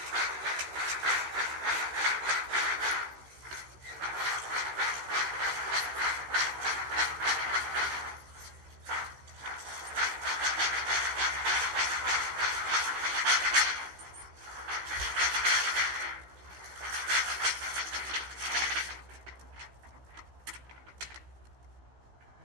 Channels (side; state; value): left; late; 15 ms